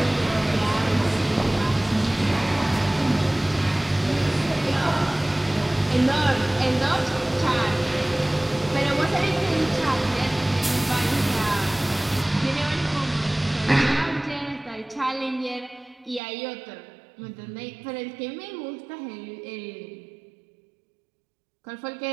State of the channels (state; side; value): drops out; left; at 16.2 s